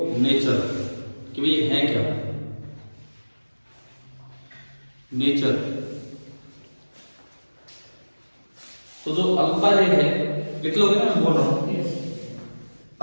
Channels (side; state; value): both; inverted; correlation -1.00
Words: नेचर, कि भाई है क्या नेचर। तो जो अल्फा रे है, लिख लोगे ना, मैं बोल रहा हूं।